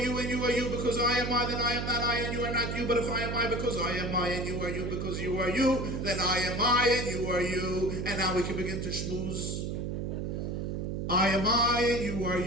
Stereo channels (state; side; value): noise; right; hum, 3 dB below the sound